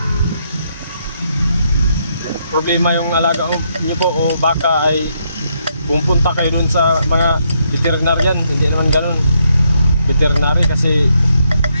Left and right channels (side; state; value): both; inverted; correlation -0.76